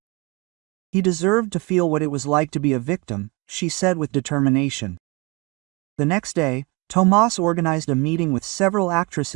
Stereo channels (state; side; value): quieter; left; 27.0 dB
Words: He deserved to feel what it was like to be a victim," she said with determination. The next day, Tomas organized a meeting with several